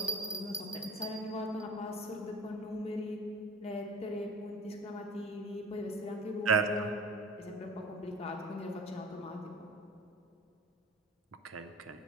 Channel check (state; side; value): normal; both; correlation 0.41